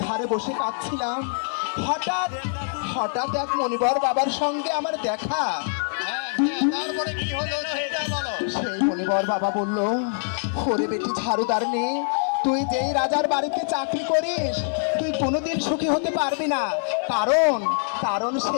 ধারে বসে পাচ্ছিলাম, হঠাৎ এক মনিবর বাবার সঙ্গে আমার দেখা। সেই মনিবর বাবা বলল, ওরে বেটি ঝাড়ুদার নেই, তুই যেই রাজার বাড়িতে চাকরি করিস তুই কোনোদিন সুখী হতে পারবি না, কারণ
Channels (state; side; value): silent; right; 62 dB below the other